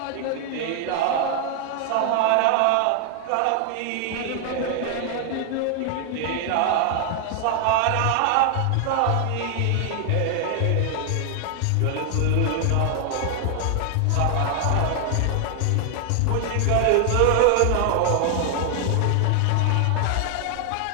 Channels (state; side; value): different; both; correlation 0.00